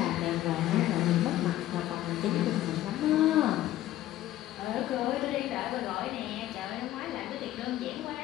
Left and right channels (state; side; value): quieter; right; 14.0 dB